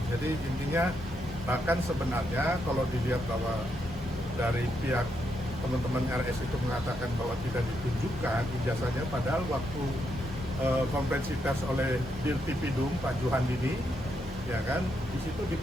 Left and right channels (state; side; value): normal; both; correlation 0.80